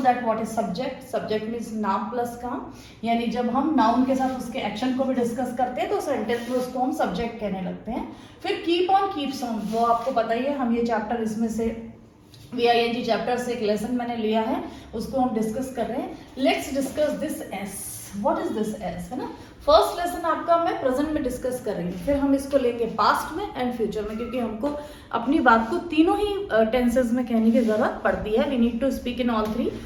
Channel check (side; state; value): both; identical; correlation 1.00